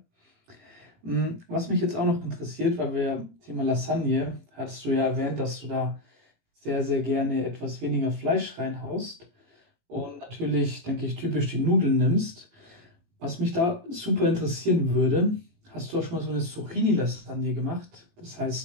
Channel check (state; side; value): late; left; 18 ms